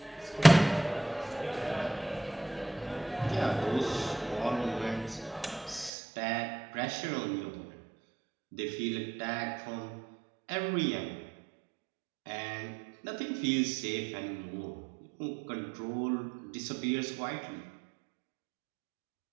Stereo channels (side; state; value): left; drops out; at 5.9 s